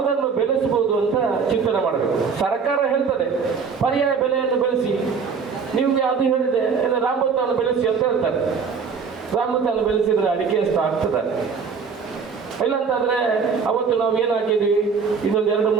ಬೆಳೆಸಬಹುದು ಅಂತ ಚಿಂತನೆ ಮಾಡಬೇಕು. ಸರ್ಕಾರ ಹೇಳ್ತದೆ ಪರ್ಯಾಯ ಬೆಲೆಯನ್ನು ಬೆಳೆಸಿ, ನಿಮ್ಗೆ ಅದು ಹೇಳಿದೆ ರಾಮಭತ್ತವನ್ನು ಬೆಳೆಸಿ ಅಂತ ಹೇಳ್ತಾರೆ. ರಾಮಭತ್ತವನ್ನು ಬೆಳೆಸಿದ್ರೆ ಅಡಿಕೆ ಎಷ್ಟು ಆಗ್ತದೆ? ಇಲ್ಲಂತಾದ್ರೆ ಅವತ್ತು ನಾವು ಏನು ಹಾಕಿದ್ವಿ, ಇನ್ನೊಂದು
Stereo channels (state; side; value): quieter; left; 5.7 dB